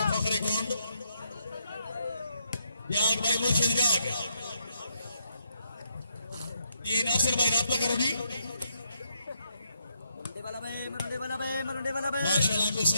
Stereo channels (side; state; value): both; inverted; correlation -0.77